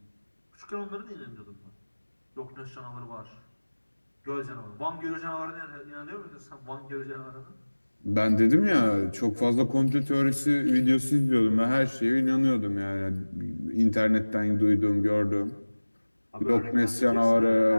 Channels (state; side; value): inverted; both; correlation -1.00